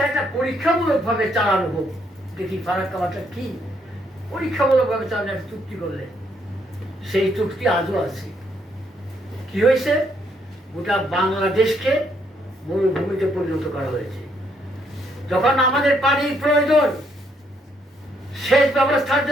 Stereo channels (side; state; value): both; normal; correlation 0.72